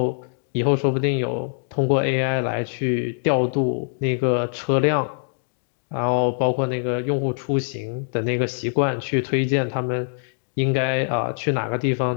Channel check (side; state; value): right; silent; digital silence